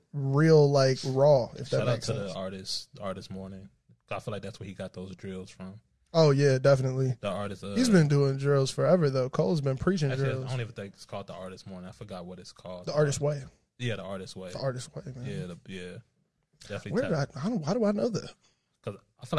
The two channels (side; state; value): both; identical; correlation 1.00